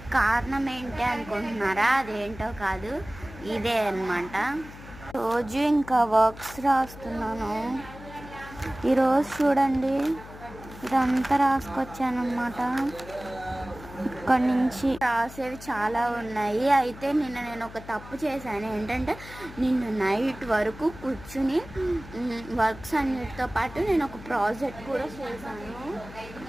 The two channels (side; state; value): left; noise; hum, 16 dB below the sound